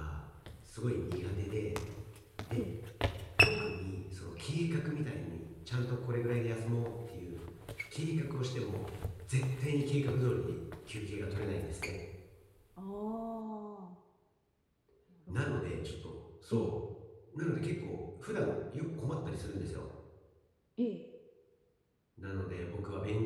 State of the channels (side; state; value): both; identical; correlation 1.00